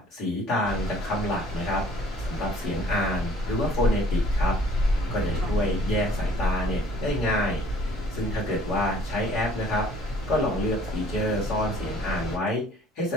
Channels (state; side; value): normal; both; correlation 0.56